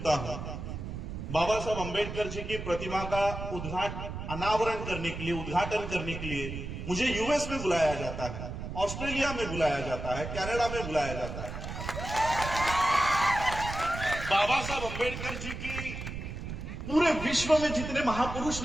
हूं, बाबा साहब अम्बेडकर जी की प्रतिमा का अनावरण करने के लिए, उद्घाटन करने के लिए मुझे यूएस में बुलाया जाता है, ऑस्ट्रेलिया में बुलाया जाता है, कनाडा में बुलाया जाता है। बाबा साहब अम्बेडकर जी की पूरे विश्व में जितने महापुरुष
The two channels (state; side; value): noise; right; rumble, 7 dB below the sound